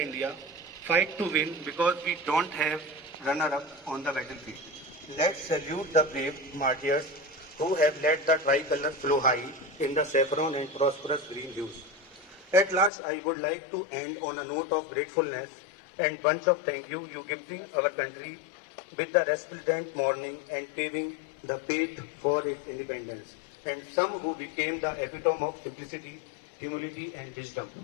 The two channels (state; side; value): drops out; right; at 12.9 s